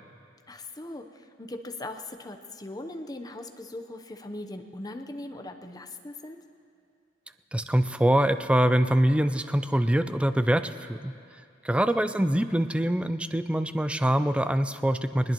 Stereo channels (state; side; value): normal; both; correlation 0.93